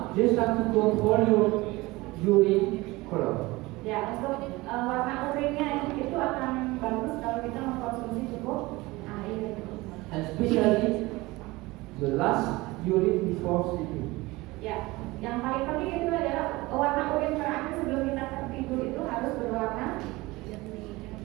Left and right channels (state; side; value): quieter; left; 21.2 dB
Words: Just have to control your urine color. Ya, untuk warna urinnya itu akan bagus kalau kita mengkonsumsi cukup air. And especially the last urine before sleeping. Ya, yang paling penting itu adalah warna urin terakhir sebelum kita tertidur itu harus berwarna